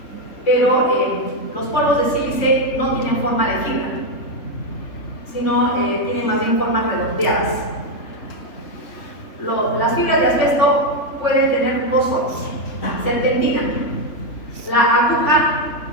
Pero los polvos de sílice no tienen forma de fibra, sino tienen más bien formas redondeadas. Las fibras de asbesto pueden tener dos formas. Serpentina. La aguja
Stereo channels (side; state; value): right; late; 3.4 ms